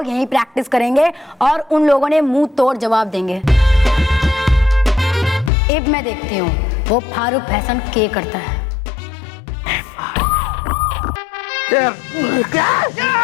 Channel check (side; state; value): right; drops out; at 5.5 s